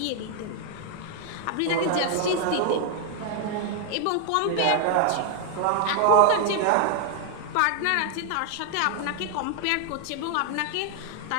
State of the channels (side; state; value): both; different; correlation 0.00